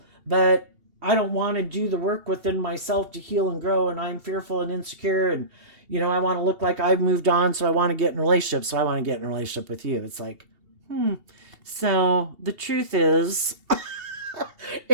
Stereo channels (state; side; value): late; left; 2.8 ms